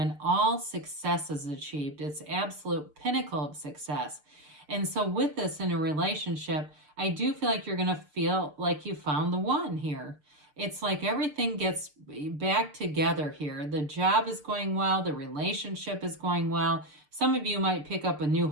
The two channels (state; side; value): late; left; 6.7 ms